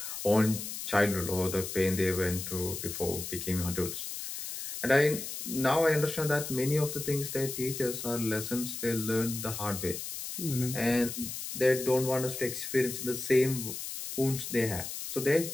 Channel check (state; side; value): noise; left; hiss, 7 dB below the sound